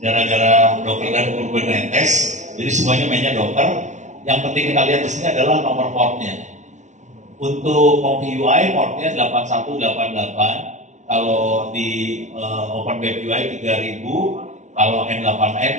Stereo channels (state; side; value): late; left; 0.35 ms